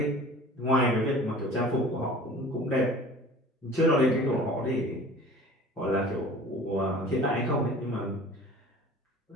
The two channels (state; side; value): normal; both; correlation 0.44